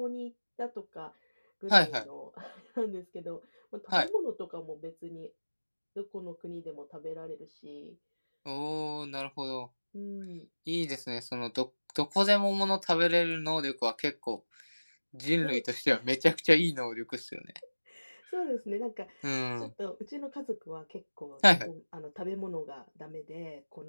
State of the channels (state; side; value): inverted; both; correlation -1.00